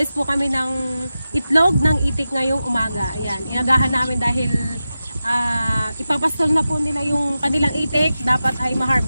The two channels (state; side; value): inverted; both; correlation -0.93